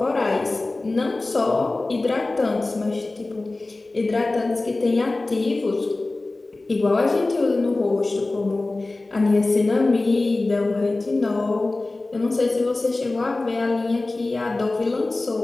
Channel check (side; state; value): right; quieter; 3.1 dB